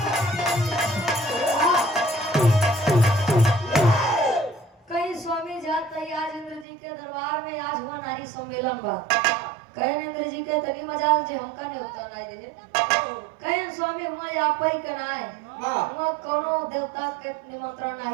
कहीं स्वामी जात है आज इंद्र जी के दरबार में आज हुआ नारी सम्मेलन बा कहे इंद्र जी के तनी मजाल जे हमका ने होता नहीं दे कहे स्वामी हुआ आप ही कनाए हुआ कोनो देवता के निमंत्रण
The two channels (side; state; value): left; drops out; at 6.7 s